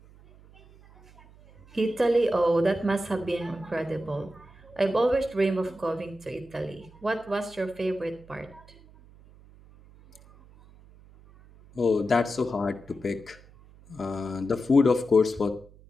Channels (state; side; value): noise; right; hum, 24 dB below the sound